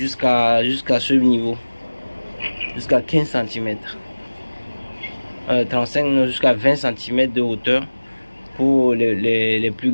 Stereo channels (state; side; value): inverted; both; correlation -1.00